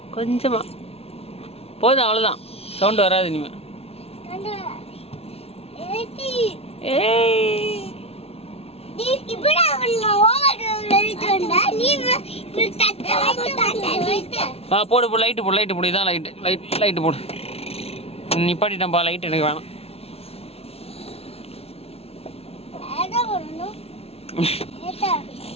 கொஞ்சமா போதும், அவ்வளோதான். சவுண்டு வராது இனிமே. போடு போடு, லைட்டு போடு, லைட்டு போடு. இதான் லைட்டு, லைட்டு போடு. நிப்பாட்டிட்டேன்ப்பா, லைட் எனக்கு வேணாம்.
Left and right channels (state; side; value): late; right; 0.29 ms